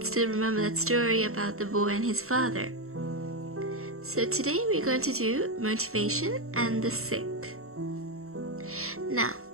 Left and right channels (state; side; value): late; left; 0.63 ms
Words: still remember that story about the boy and his father. So today we're going to do motivation and the sick. Now,